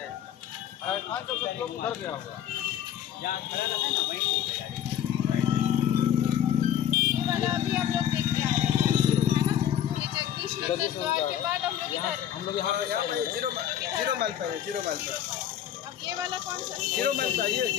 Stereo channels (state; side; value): quieter; right; 10.4 dB